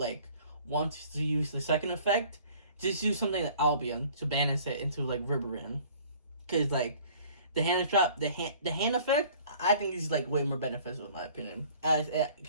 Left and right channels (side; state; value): both; inverted; correlation -0.52